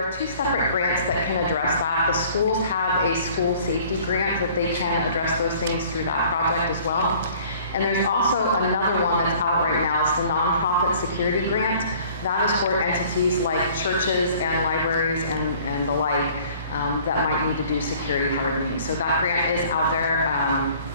two separate grants that can address that. The schools have a school safety grant that they can address those things through that project as well. And there's also another one that's out right now. It's the nonprofit security grant. That is for entities like churches and libraries and the like that might need to do security hardening. So that grant is out there.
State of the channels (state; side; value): inverted; both; correlation -0.52